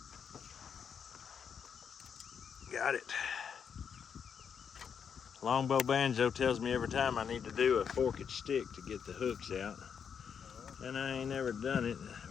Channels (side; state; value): right; quieter; 7.2 dB